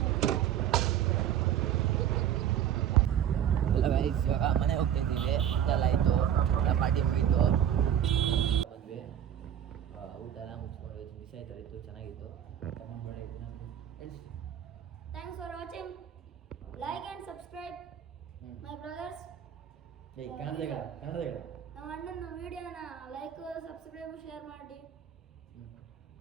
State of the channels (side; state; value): left; quieter; 10.0 dB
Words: ಎಲ್ಲ ಗೈಸ್ ಇವಾಗ ಮನೆಗೆ ಹೋಗ್ತಾ ಇದ್ದೀವಿ. ಎಲ್ಲ ಆಯಿತು, ಎಲ್ಲ ಪಾರ್ಟಿ ಮುಗೀತು, ಬಂದ್ವಿ. ಊಟ ಎಲ್ಲ ಮುಗಿಸ್ಕೊಂಡು ಮಿಸ್ ಆಯ್ತು, ಚೆನ್ನಾಗಿತ್ತು. Thanks for watching. Like and subscribe my brothers. Kannada ನಮ್ಮ ಅಣ್ಣನ ವಿಡಿಯೋನ ಲೈಕ್ ಸಬ್ಸ್ಕ್ರೈಬ್ ಶೇರ್ ಮಾಡಿ.